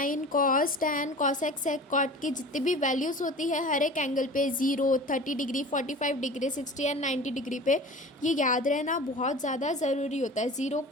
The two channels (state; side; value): normal; both; correlation 0.39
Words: कॉस, टैन, कॉसेक, सेक, कॉट की जितनी भी वैल्यूज़ होती है हर एक एंगल पे 0, 30 डिग्री, 45 डिग्री, 60 एंड 90 डिग्री पे, ये याद रहना बहुत ज़्यादा ज़रूरी होता है। 0